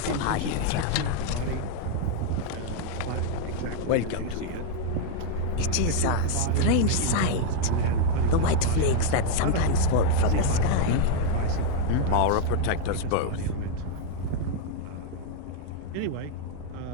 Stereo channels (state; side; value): different; both; correlation 0.00